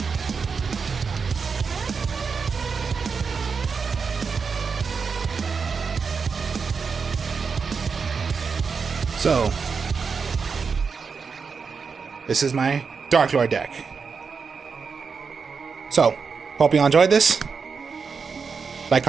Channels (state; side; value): quieter; left; 5.4 dB